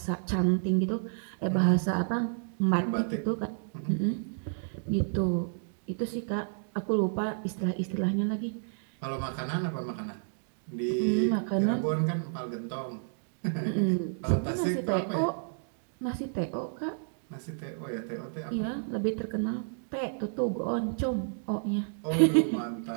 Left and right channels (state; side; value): silent; left; digital silence